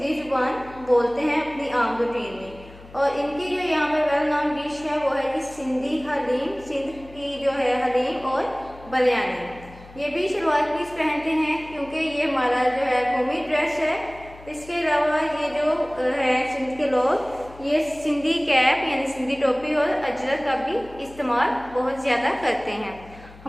ज़ुबान बोलते हैं अपनी आम रूटीन में। और इनकी जो यहाँ पर वेल नाउन डिश है वो है कि सिंधी हलीम, सिंध की जो है हलीम और बिरयानी। ये भी शलवार कमीज पहनते हैं क्योंकि ये हमारा जो है कौमी ड्रेस है। इसके अलावा ये जो है सिंध के लोग ये सिंधी कैप यानी सिंधी टोपी और अजरक का भी इस्तेमाल बहुत ज़्यादा करते हैं।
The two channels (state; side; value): noise; left; hum, 20 dB below the sound